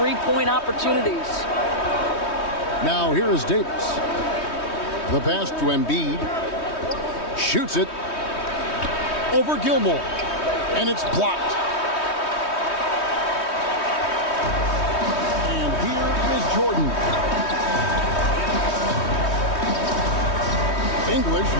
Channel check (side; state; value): right; late; 3.2 ms